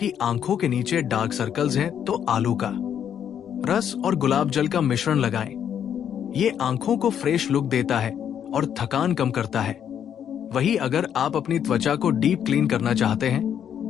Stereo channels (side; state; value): right; quieter; 9.0 dB